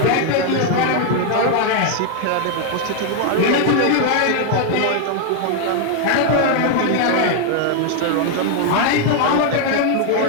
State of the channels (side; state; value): both; different; correlation 0.00